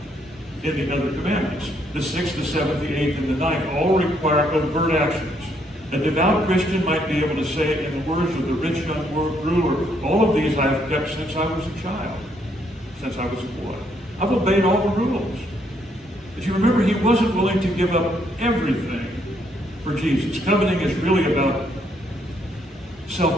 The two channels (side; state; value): both; normal; correlation 0.71